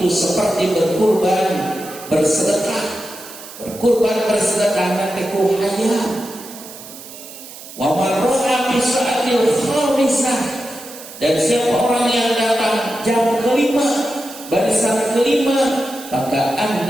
seperti berkurban bersedekah. Berkurban bersedekah nanti ku hayam. Wa man roha bisa'atil khamisah, dan siapa orang yang datang jam kelima, barisan kelima, maka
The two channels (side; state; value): right; noise; hiss, 15 dB below the sound